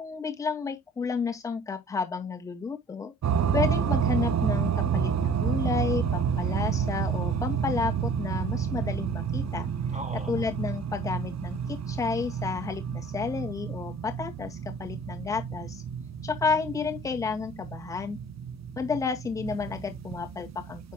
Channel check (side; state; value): both; normal; correlation 0.50